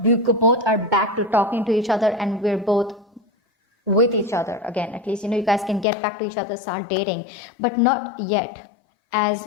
we both are back to talking to each other, and we're both with each other again. At least, you know, you guys can get back to each other, start dating, but not yet as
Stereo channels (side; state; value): right; drops out; at 5.9 s